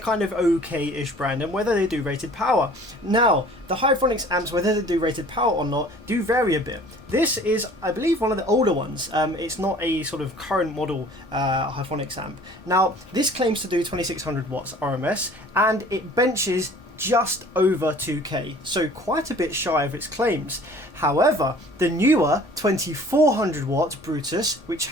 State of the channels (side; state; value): both; normal; correlation 0.49